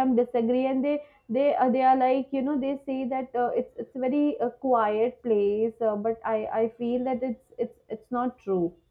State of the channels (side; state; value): both; identical; correlation 1.00